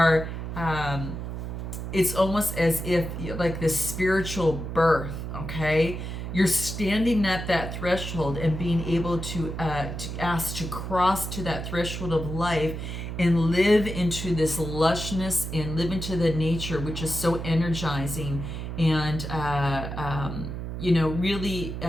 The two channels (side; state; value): right; noise; hum, 6 dB below the sound